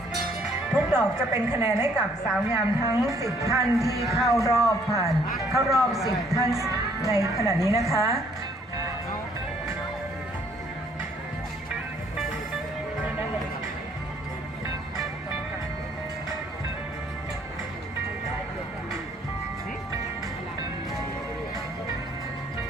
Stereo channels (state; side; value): normal; both; correlation 0.64